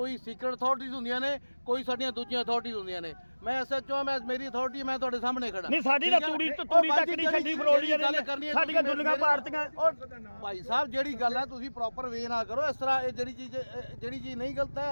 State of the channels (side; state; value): both; inverted; correlation -1.00